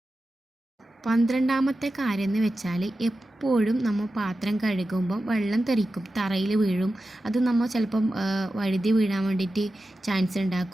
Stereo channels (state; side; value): normal; both; correlation 0.93